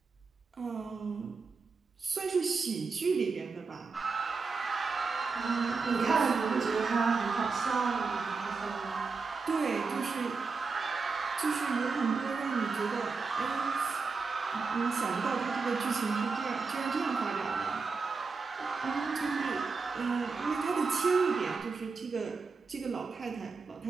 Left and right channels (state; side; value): quieter; left; 4.6 dB